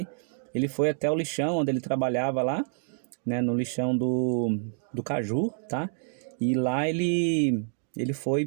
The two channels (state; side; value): silent; left; digital silence